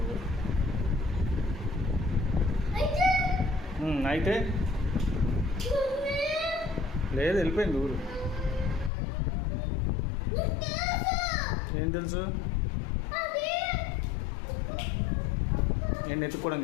అయితే లేదు, వెళ్ళిపోయింది ఊరు. ఏం తెలుసు? నేను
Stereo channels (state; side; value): drops out; right; at 8.9 s